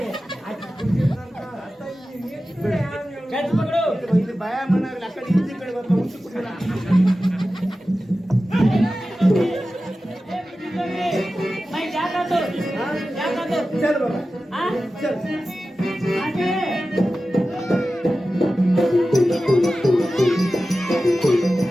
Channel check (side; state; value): both; normal; correlation 0.94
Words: चंड पकड़ो ಭಯ ಮನಾಗಲ್ಲ ಆ ಕಡೆ ಈ ಕಡೆ ಬರ್ತಾ ಉಂಚು ಕುಡಿಯೋಣ मैं जाता तो जाता तो ಚಲ್ ಬಾಬಾ हाँ ಚಲ್ आगे